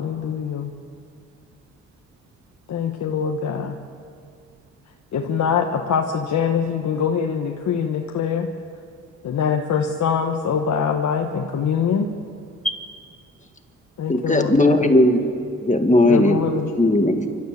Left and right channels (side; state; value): right; quieter; 3.3 dB